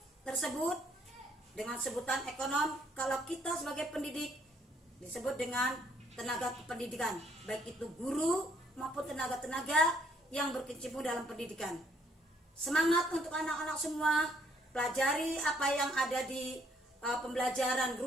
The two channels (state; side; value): normal; both; correlation 0.66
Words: tersebut dengan sebutan ekonom. Kalau kita sebagai pendidik disebut dengan tenaga kependidikan, baik itu guru maupun tenaga-tenaga yang berkecimpung dalam pendidikan. Semangat untuk anak-anak semua, pelajari apa yang ada di pembelajaran,